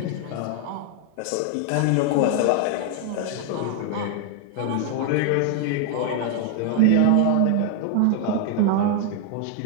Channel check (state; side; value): different; both; correlation 0.00